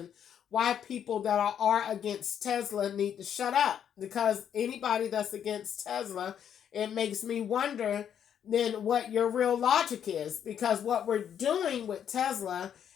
why people that are against Tesla need to shut up. Because anybody that's against Tesla, it makes me wonder then what your real logic is. Because what we're doing with Tesla,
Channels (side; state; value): right; quieter; 8.9 dB